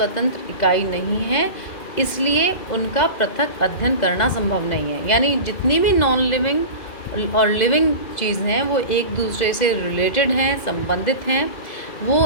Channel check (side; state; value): right; late; 2.0 ms